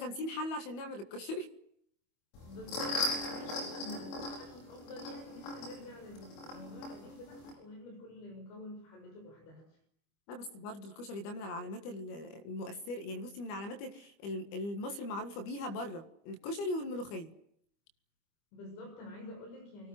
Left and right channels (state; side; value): late; right; 25 ms